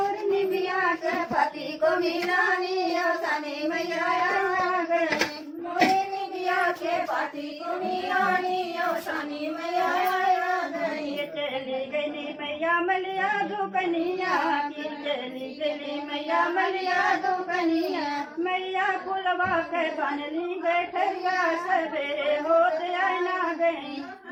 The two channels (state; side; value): identical; both; correlation 1.00